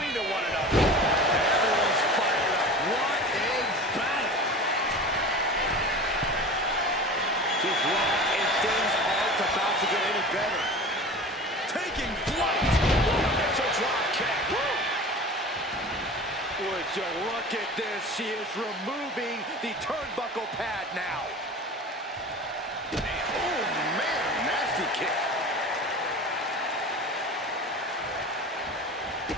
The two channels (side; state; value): both; normal; correlation 0.36